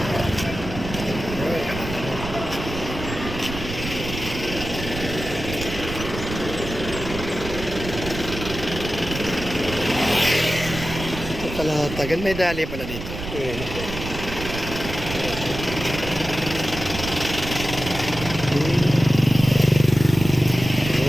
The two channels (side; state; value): right; noise; rumble, 8 dB below the sound